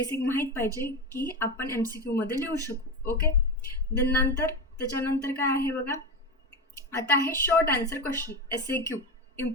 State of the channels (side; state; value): both; normal; correlation 0.19